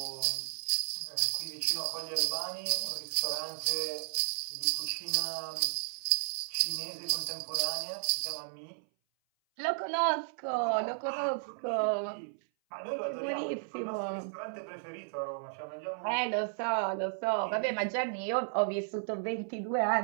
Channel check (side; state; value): left; silent; 55 dB below the other